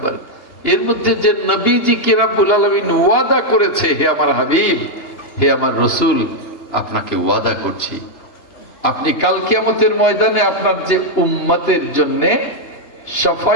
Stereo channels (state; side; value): late; right; 2.8 ms